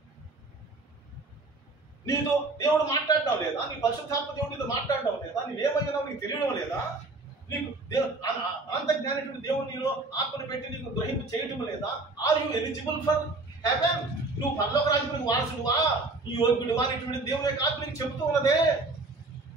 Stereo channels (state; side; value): quieter; left; 3.3 dB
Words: నీతో దేవుడు మాట్లాడడం లేదా? నీ పరిశుద్ధాత్మ దేవుడు నీతో మాట్లాడడం లేదా? నీవేమయ్యావు నీకు తెలియడం లేదా? నీకు అనంత జ్ఞానటువంటి దేవుడు నీలో ఆత్మను పెట్టి నీకు గ్రహింపు చేయటం లేదా? Are you eligible for heaven? నువ్వు పరలోక రాజ్యానికి వారసుడువా, నీ యోగ్యుడువా అనేటువంటి దేవుని యొక్క ఆత్మ నీకు చెబుతూ ఉన్నదే.